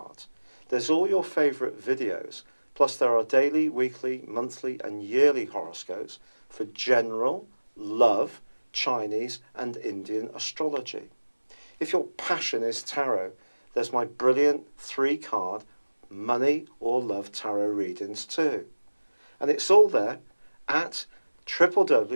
There's all your favourite videos, plus there are daily, weekly, monthly and yearly horoscopes for general, love, Chinese and Indian astrology. If your passion is tarot, there's my brilliant 3-card money or love tarot readings too. And it's all there at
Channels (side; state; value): both; inverted; correlation -1.00